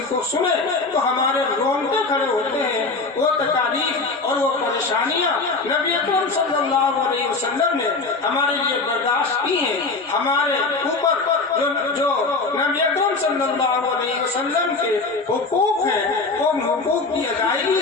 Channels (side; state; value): right; quieter; 3.8 dB